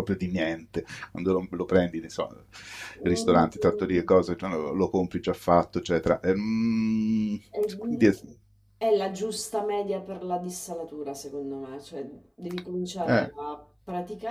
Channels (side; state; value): both; identical; correlation 1.00